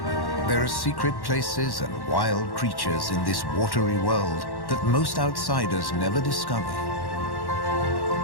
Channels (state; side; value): late; right; 1.1 ms